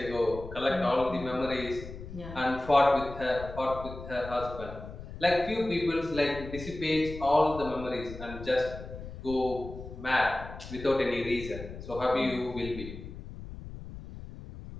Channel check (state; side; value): noise; left; rumble, 12 dB below the sound